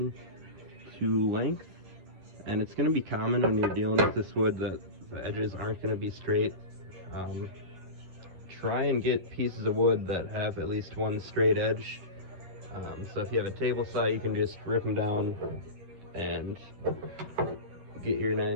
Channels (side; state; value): left; late; 11 ms